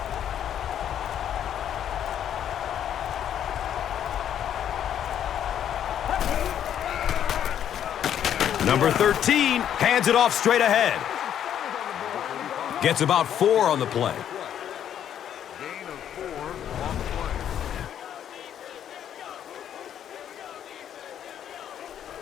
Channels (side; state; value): right; quieter; 9.8 dB